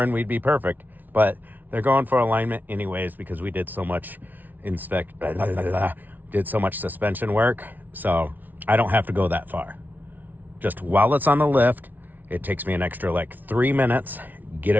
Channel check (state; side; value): late; left; 0.082 ms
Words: and we'd be perfect. But they're going for alignment anyways because we did so much did so much suspension work. So I don't have to go that far. Just while it's on the lift, it takes me an extra like 3 minutes, get